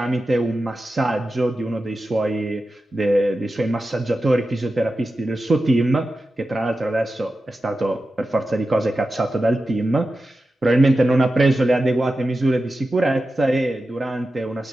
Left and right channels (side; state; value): both; normal; correlation 0.92